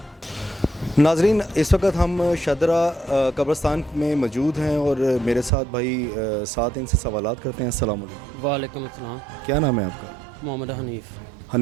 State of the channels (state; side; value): drops out; left; at 5.5 s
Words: नाज़रीन, इस वक्त हम शादरा कब्रिस्तान में मौजूद हैं और मेरे साथ भाई साथ इनसे सवालात करते हैं। अस्सलाम वालेकुम। वालेकुम अस्सलाम। क्या नाम है आपका? मोहम्मद हनीफ़।